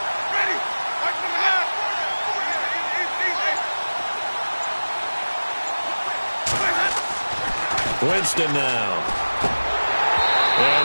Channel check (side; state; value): both; inverted; correlation -1.00